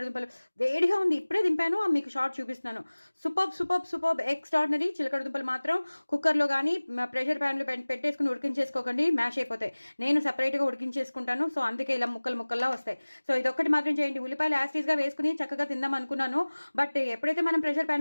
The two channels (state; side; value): inverted; both; correlation -1.00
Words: దుంపలు వేడిగా ఉంది, ఇప్పుడే దింపాను, మీకు షార్ట్ చూపిస్తున్నాను. Super extraordinary. చిలకడ దుంపలు మాత్రం కుక్కర్లో కానీ ప్రెషర్ ప్యాన్లో పెట్టేసుకుని ఉడికించేసుకోకండి, మ్యాష్ అయిపోతాయి. నేను సపరేట్గా ఉడికించేసుకుంటాను. సో అందుకే ఇలా ముక్కల్లా వస్తాయి. సో ఇదొక్కటి మాత్రం చేయండి. ఉల్లిపాయలు యాస్టీస్గా వేసుకుని చక్కగా తిందాం అనుకున్నాను. బట్ ఎప్పుడైతే మనం ప్రెషర్